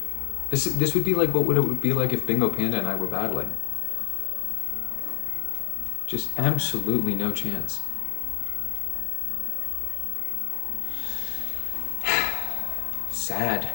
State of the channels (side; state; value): right; silent; 60 dB below the other